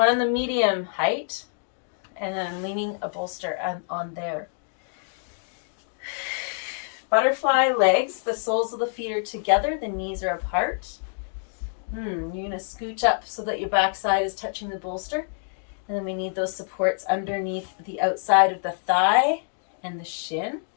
on the medium height, and then I'm leaning a bolster on there. Butterfly legs, the soles of the feet are together, the knees are apart. You're going to scooch up so that your backside is touching the bolster. And then we need those supports underneath the outside of the thigh and the shin.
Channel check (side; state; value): right; silent; digital silence